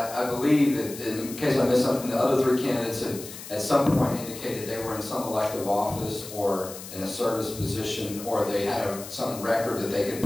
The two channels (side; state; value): left; noise; hiss, 13 dB below the sound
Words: believe that, in case I missed something, the other three candidates had at some point indicated they were in some elective office or in a service position or they had some record that they could